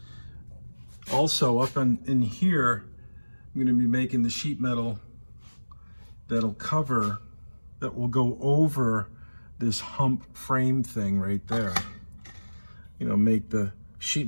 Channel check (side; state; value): both; inverted; correlation -1.00